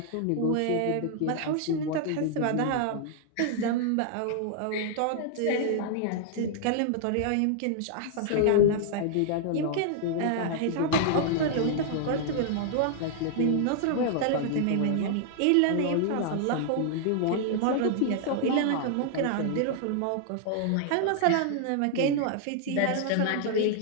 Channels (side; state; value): both; different; correlation -0.01